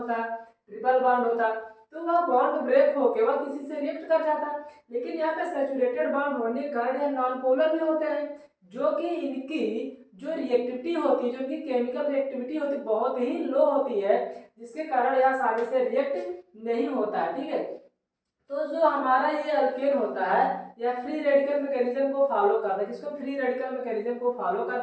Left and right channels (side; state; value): both; identical; correlation 1.00